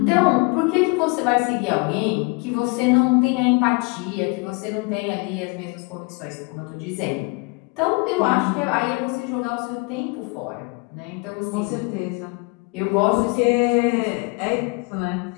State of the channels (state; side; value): quieter; right; 28.9 dB